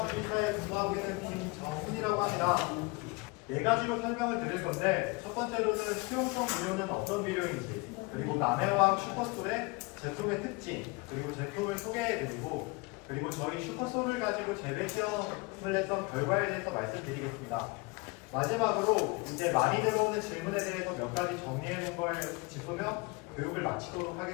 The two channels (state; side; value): quieter; right; 26.6 dB